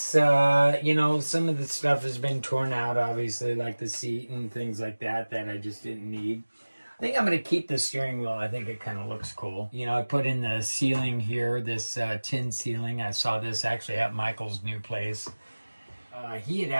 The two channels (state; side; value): inverted; both; correlation -1.00